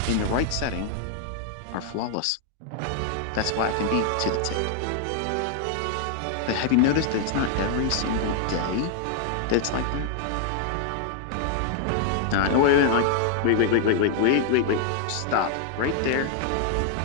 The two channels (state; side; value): different; both; correlation 0.00